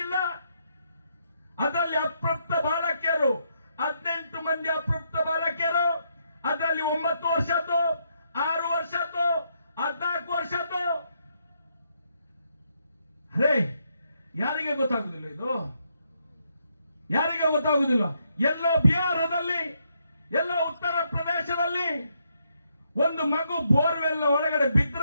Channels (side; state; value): both; inverted; correlation -0.76